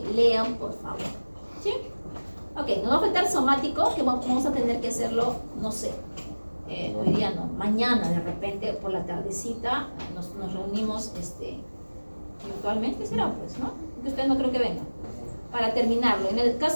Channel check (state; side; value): inverted; both; correlation -1.00